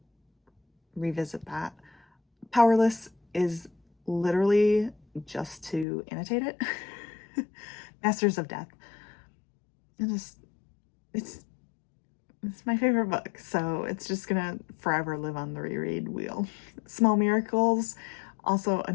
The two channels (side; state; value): right; drops out; at 5.9 s